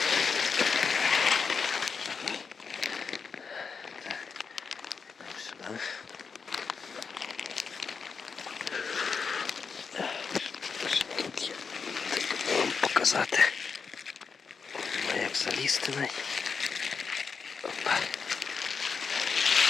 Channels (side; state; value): right; quieter; 5.5 dB